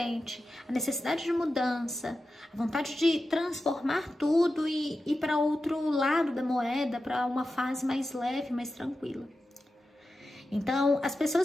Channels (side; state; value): both; normal; correlation 0.92